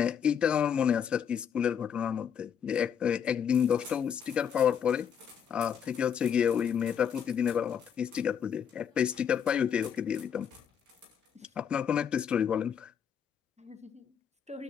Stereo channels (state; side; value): quieter; right; 8.0 dB